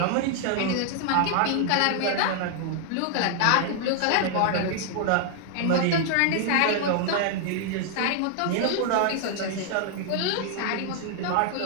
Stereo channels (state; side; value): different; both; correlation 0.00